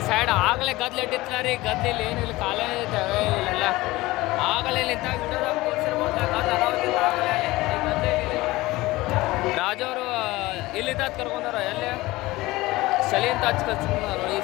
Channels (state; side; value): quieter; right; 19.5 dB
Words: ಸೈಡ್ ಆಗಲೇ ಗದ್ಲು ಇಟ್ಟಿರ್ತಾರ ರೀ ಗದ್ದೆಲ್ಲಿ ಏನಿಲ್ಲ ಕಾಲೇ ಇದ್ದಾವೆ ಇಲ್ಲೆಲ್ಲ ಆಗಲೇ ನಿಂತಾಗ ರಾಜು ಅವರು ಇಲ್ಲಿಂದ ಕರ್ಕೊಂಡಾರ ಎಲ್ಲಿ ಚಳಿ ಅಂತ ಹಚ್ಕೊಂಡ್ರು ಈ